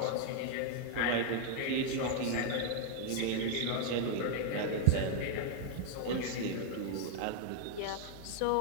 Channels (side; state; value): both; different; correlation 0.00